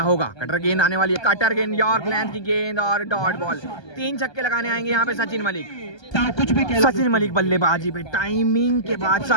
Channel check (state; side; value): late; right; 1.2 ms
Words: होगा? कटर गेंद आने वाली है। कटर गेंद यॉर्क लेंथ की गेंद और डॉट बॉल। 3 छक्के लगाने आएंगे यहाँ पे सचिन मलिक। सचिन मलिक बल्लेबाजी पे टाइमिंग के